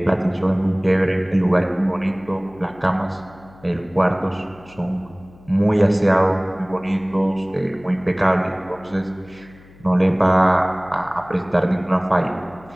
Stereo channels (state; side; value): noise; left; hum, 24 dB below the sound